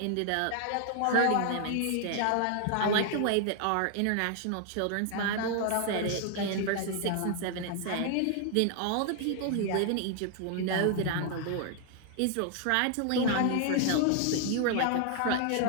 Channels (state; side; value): different; both; correlation 0.00